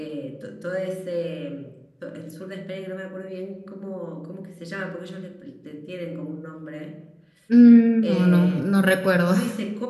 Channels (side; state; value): both; identical; correlation 1.00